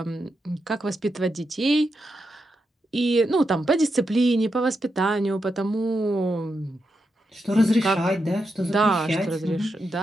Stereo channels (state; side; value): normal; both; correlation 0.85